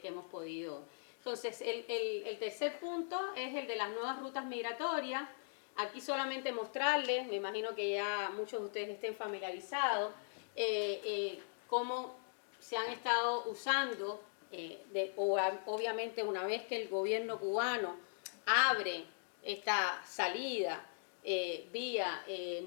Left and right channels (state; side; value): silent; right; digital silence